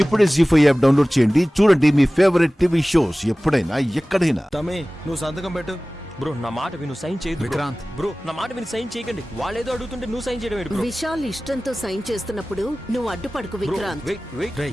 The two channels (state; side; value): normal; both; correlation 0.98